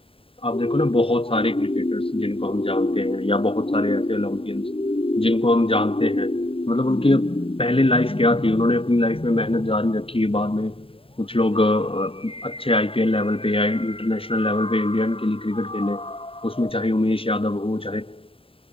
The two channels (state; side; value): late; right; 0.27 ms